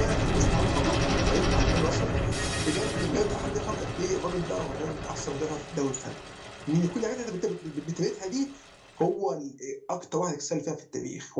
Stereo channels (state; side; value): identical; both; correlation 1.00